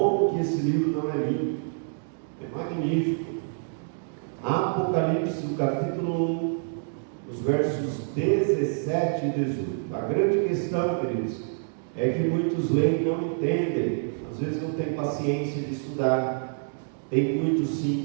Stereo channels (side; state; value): left; silent; digital silence